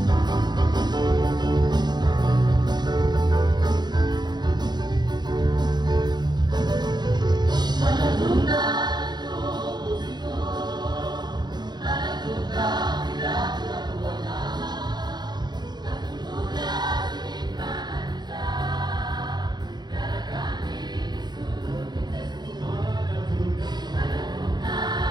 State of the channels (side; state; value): left; late; 0.21 ms